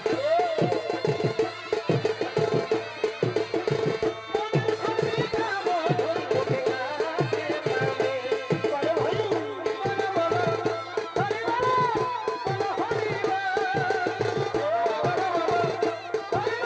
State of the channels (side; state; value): both; identical; correlation 1.00